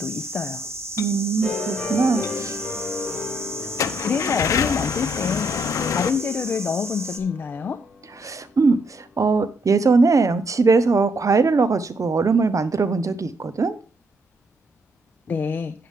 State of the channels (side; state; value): both; normal; correlation 0.73